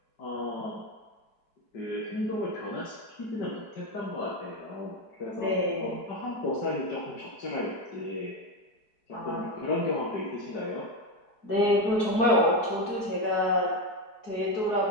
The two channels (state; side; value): late; right; 4.7 ms